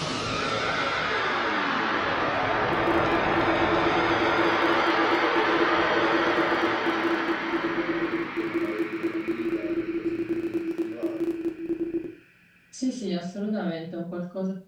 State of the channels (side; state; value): both; identical; correlation 1.00